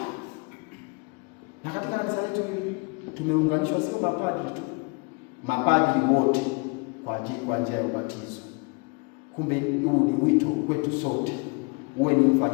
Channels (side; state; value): right; quieter; 32.2 dB